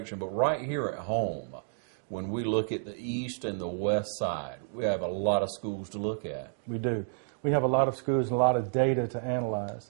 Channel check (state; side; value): silent; left; digital silence